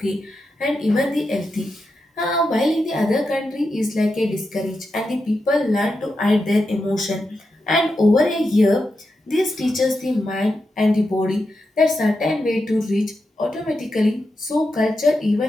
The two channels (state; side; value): normal; both; correlation 0.87